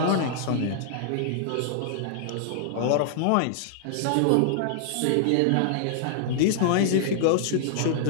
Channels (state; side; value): different; both; correlation -0.01